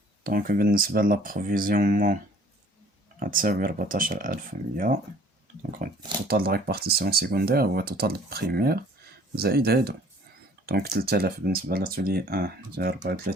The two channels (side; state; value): both; normal; correlation 0.54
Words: دونك بالنسبة لابروفيزيونمون غتساوي 14,100. دونك التوتال د ريبارتيسيون سيكوندير هو توتال بريمير زائد هادو. دونك 3000 بالنسبة لاتولي 1 هي